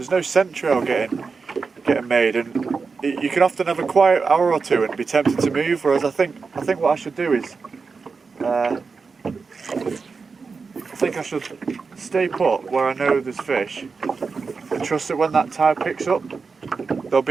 no scent trail getting made, and you can often have a quiet hour or two and be tempted to move, whereas I think what I should do is I think I should stay put where I know there's fish and trust that when that tide picks up there'll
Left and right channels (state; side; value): quieter; left; 4.8 dB